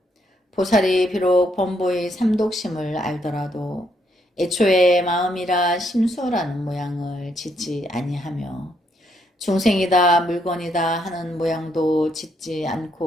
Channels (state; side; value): normal; both; correlation 0.74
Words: 보살이 비록 범보의 삼독심을 알더라도 애초에 마음이라 심수라는 모양을 짓지 아니하며 중생이다 물건이다 하는 모양도 짓지